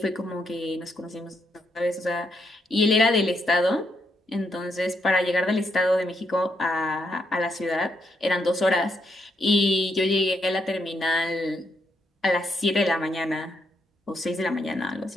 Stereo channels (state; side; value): normal; both; correlation 0.78